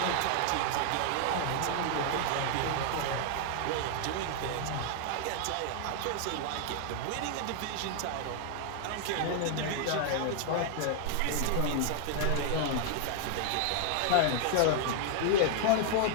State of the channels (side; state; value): both; different; correlation 0.00